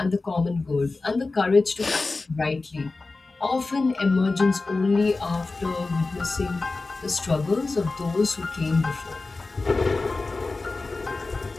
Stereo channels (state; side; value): quieter; right; 3.6 dB